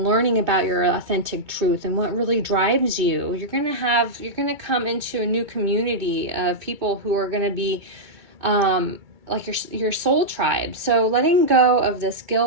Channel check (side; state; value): left; late; 2.3 ms